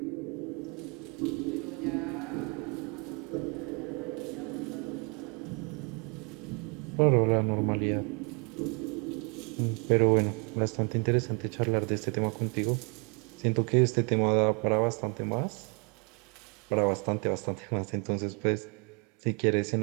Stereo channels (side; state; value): left; quieter; 34.3 dB